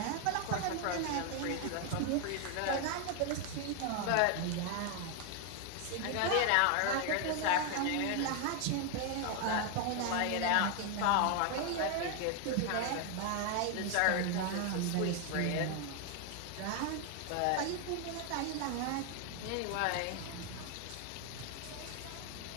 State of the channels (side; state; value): both; different; correlation 0.01